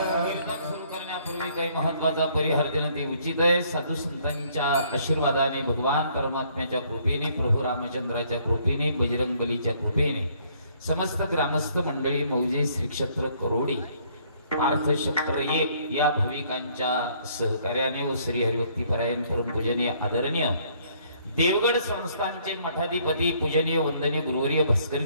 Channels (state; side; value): inverted; both; correlation -0.64